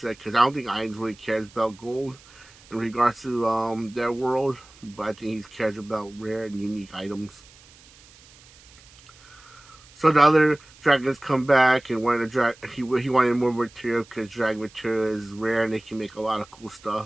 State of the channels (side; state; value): right; noise; hiss, 25 dB below the sound